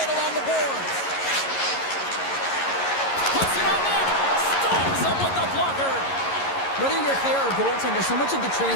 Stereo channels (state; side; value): late; right; 11 ms